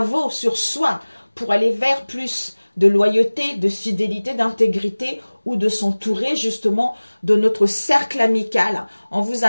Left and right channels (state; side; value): inverted; both; correlation -1.00